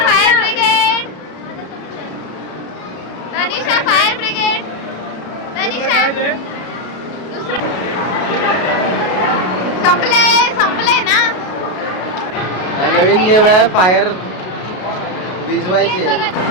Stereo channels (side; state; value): right; late; 33 ms